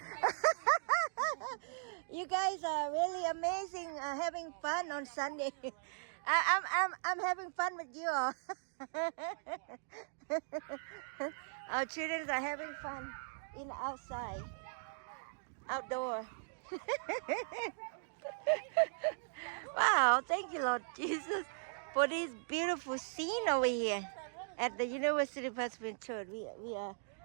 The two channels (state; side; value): silent; left; digital silence